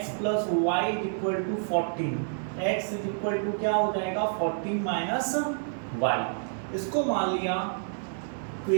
plus y is equal to 14, x is equal to क्या हो जाएगा 14 माइनस वाई। इसको मान लिया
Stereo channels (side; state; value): left; silent; digital silence